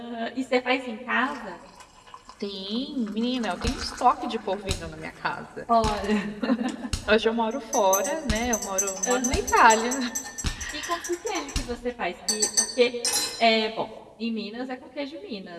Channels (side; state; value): both; identical; correlation 1.00